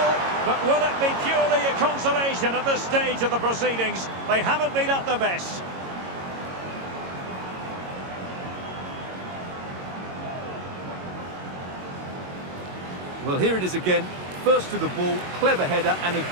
But will it be purely a consolation at this stage of the proceedings? They haven't been at their best. Well, here it is again. First to the ball, clever header and a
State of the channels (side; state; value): left; late; 22 ms